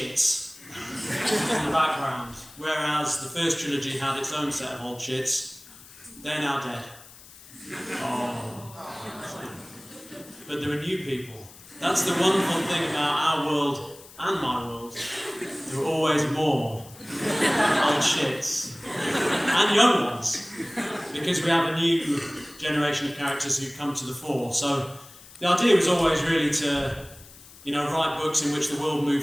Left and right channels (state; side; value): noise; left; hiss, 20 dB below the sound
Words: in the background, whereas the first trilogy had its own set of old shits. They're now dead. Oh. But there are new people. That's the wonderful thing about our world and my world. There are always more old shits. And young ones. Because we have a new generation of characters who come to the fore. So the idea was always really to, write books in which the world